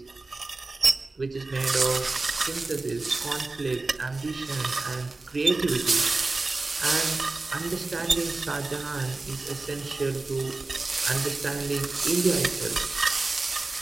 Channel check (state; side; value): quieter; left; 3.4 dB